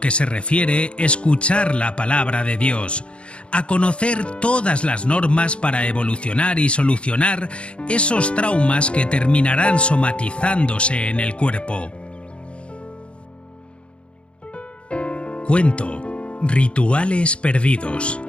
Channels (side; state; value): right; late; 0.058 ms